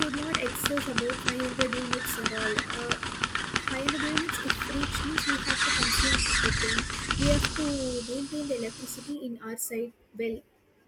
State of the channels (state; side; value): identical; both; correlation 1.00